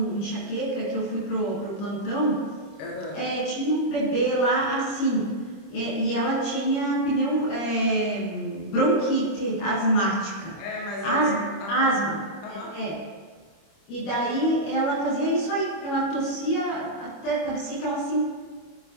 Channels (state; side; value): late; right; 25 ms